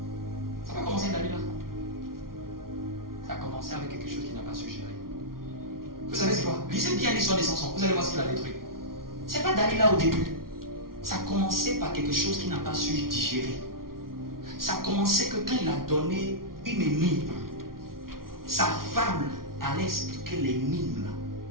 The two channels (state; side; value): late; left; 0.93 ms